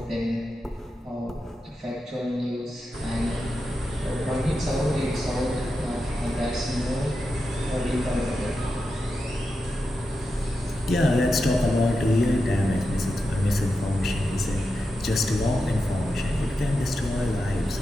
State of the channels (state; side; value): normal; both; correlation 0.89